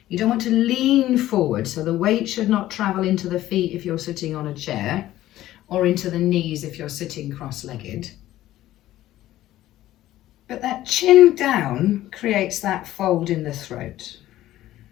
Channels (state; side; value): quieter; right; 14.4 dB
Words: You don't want to lean forward, so the weight should not travel into the feet if you're sitting on a chair, or into the knees if you're sitting cross-legged. But that chin down creates that fold in the throat.